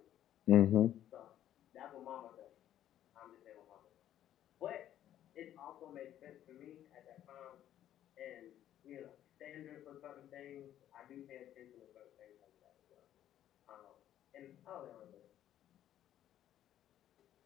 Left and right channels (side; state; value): right; quieter; 11.7 dB